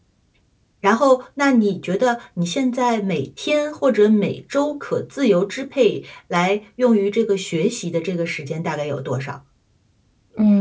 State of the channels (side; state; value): both; identical; correlation 1.00